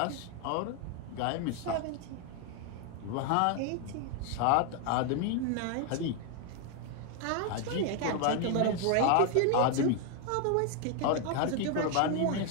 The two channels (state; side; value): different; both; correlation 0.01